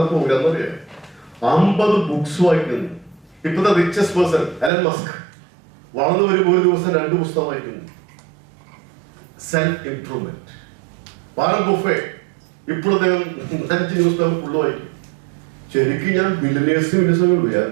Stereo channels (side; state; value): left; drops out; at 4.7 s